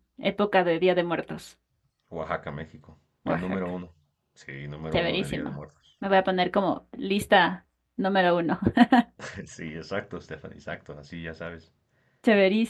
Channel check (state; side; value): identical; both; correlation 1.00